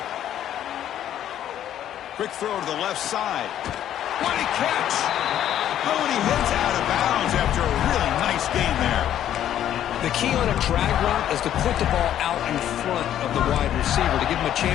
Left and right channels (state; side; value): quieter; right; 11.1 dB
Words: Quick throw to the left side. What a catch! Oh, and he hits out of bounds after a really nice gain there. The key on a drag route is to put the ball out in front of the wide receiver to give him a